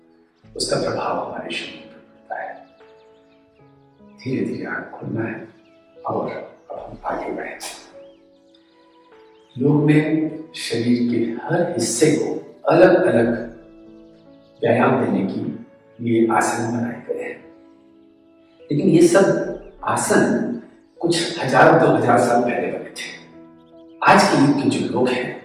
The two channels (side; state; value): both; identical; correlation 1.00